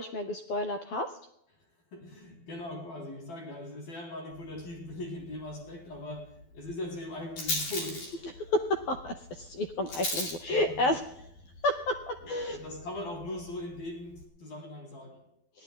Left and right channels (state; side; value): late; right; 12 ms